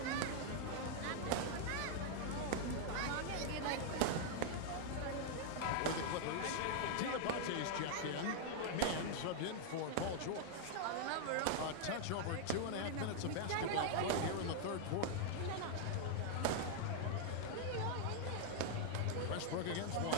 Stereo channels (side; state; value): both; different; correlation -0.01